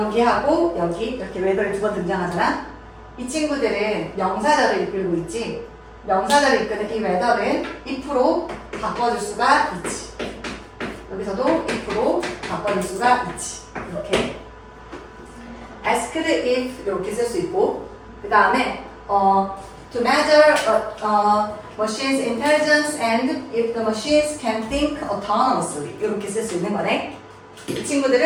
여기 이렇게 웨더리 두 번 등장하잖아. 이 친구들은 명사절을 이끌고 있지. 명사절을 이끄는 이 웨더는 if로 바꿔줄 수가 있지. 여기서도 if로 바꿔줄 수가 있지. 이렇게 asked if 이렇게 쓸 수 있고 그 다음에 to measure machine's intelligence and if the machines can think autonomously 이렇게 쓸 수 있는 거네. 이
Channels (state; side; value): identical; both; correlation 1.00